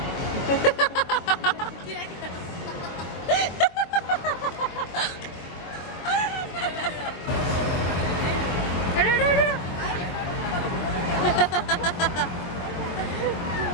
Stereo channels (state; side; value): late; right; 23 ms